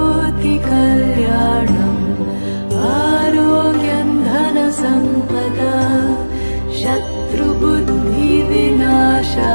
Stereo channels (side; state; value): both; inverted; correlation -1.00